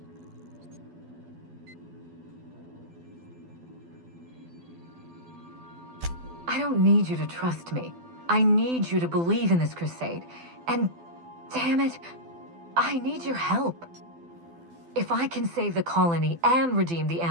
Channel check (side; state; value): left; late; 12 ms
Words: I don't need you to trust me. I need you to believe in this crusade. And, damn it, I need your help. If I can save the colony and redeem the